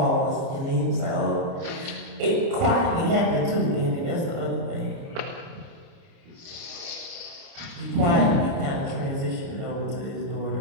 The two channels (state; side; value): late; left; 29 ms